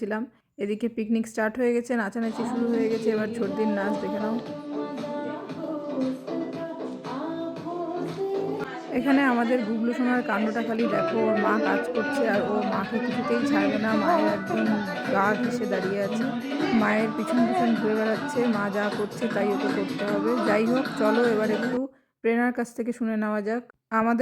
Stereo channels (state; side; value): identical; both; correlation 1.00